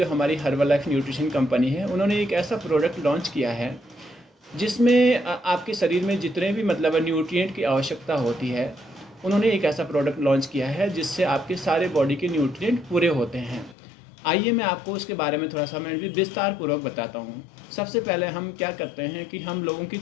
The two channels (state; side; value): drops out; right; at 13.8 s